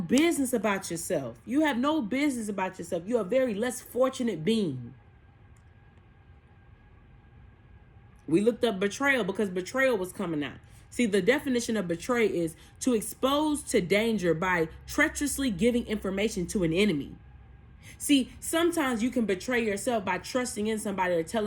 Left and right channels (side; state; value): both; identical; correlation 1.00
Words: about yourself. You have no business about yourself. You're a very less fortunate being. We looked up betrayal because betrayal was coming out. See, the definition of betray is to expose to danger by treacherously giving information to an enemy. See, sometimes you can betray yourself by trusting in somebody or